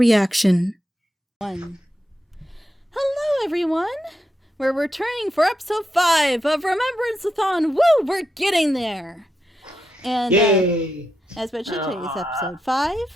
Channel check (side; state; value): both; normal; correlation 0.85